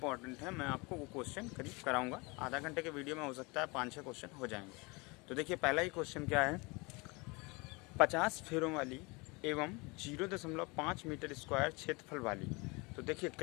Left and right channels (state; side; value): quieter; right; 26.8 dB